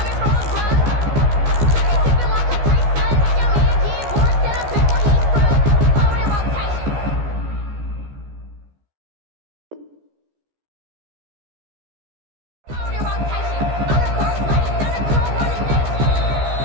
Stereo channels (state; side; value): late; left; 14 ms